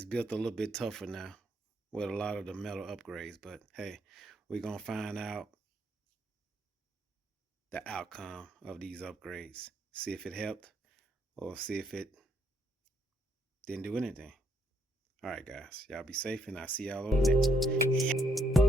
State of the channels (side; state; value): both; normal; correlation 0.73